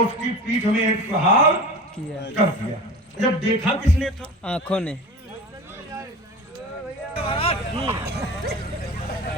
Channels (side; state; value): both; normal; correlation 0.34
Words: उसकी पीठ में एक प्रहार कर दिया। जब देखा किसने था? आंखों ने।